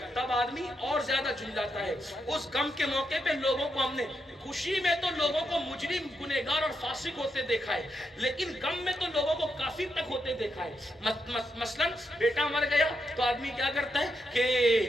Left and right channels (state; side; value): normal; both; correlation 0.82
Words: تب آدمی اور زیادہ جھنجھلاتا ہے. اس غم کے موقع پہ لوگوں کو ہم نے، خوشی میں تو لوگوں کو مجرم، گنہگار اور فاسق ہوتے دیکھا ہے، لیکن غم میں تو لوگوں کو کافر تک ہوتے دیکھا ہے. مثلا بیٹا مر گیا تو آدمی کیا کرتا ہے کہ